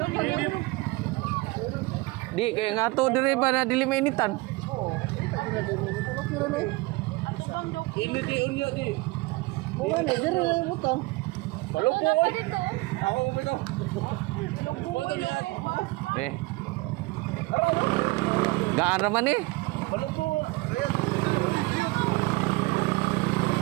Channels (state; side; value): quieter; left; 23.0 dB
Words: Di kaya nga to dire ba na dili mainitan. Ini di unya di. Bukan ni dire utang. Palupo. Ako ubito. Foto lihat. Eh. Gaan raman eh. Palupo. Ayan.